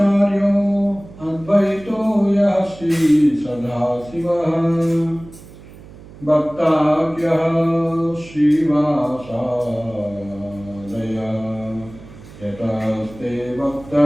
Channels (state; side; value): noise; right; hum, 19 dB below the sound